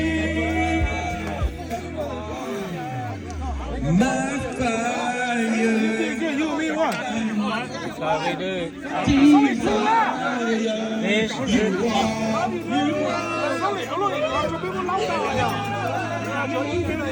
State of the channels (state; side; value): identical; both; correlation 1.00